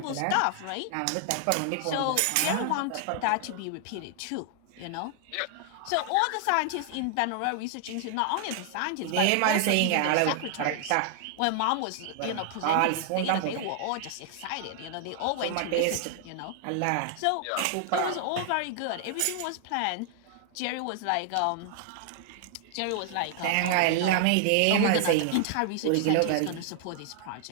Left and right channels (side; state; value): both; different; correlation 0.00